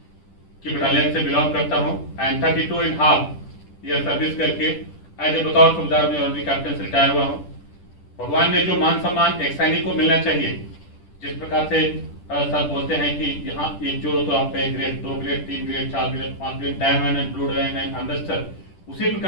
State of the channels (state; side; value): late; right; 10 ms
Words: की बटालियन से बिलोंग करता हूँ एंड 32.5 ईयर सर्विस करके एज ए बतौर सूबेदार में ऑर्डनरी कैप्टन से रिटायर हुआ हूँ। भगवान ने जो मान सम्मान एक सैनिक को मिलना चाहिए, जिस प्रकार से सर बोलते हैं कि यहाँ एक जोड़ो तो आप grade 2 grade 3 grade 4 grade 5 grade diamond and blue diamond and ambassador, उसी